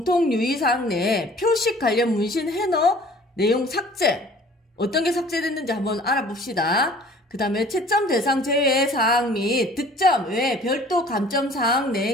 유의사항 내에 표식 관련 문신 해너 내용 삭제. 어떤 게 삭제됐는지 한번 알아봅시다. 그 다음에 채점 대상 제외 사항 및 득점 외에 별도 감점 사항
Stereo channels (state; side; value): normal; both; correlation 0.50